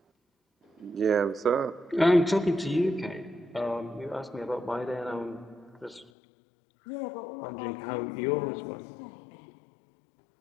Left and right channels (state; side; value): drops out; right; at 6.1 s